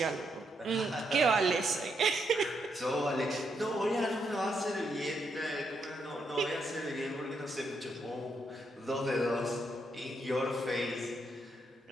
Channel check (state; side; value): normal; both; correlation 0.79